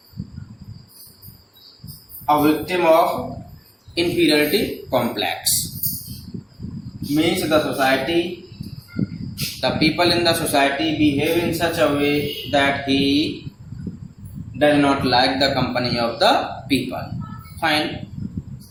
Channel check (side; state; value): both; identical; correlation 1.00